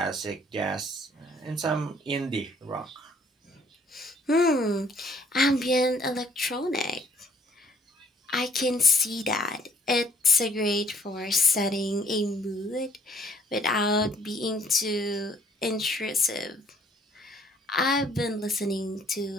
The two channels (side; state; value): both; normal; correlation 0.61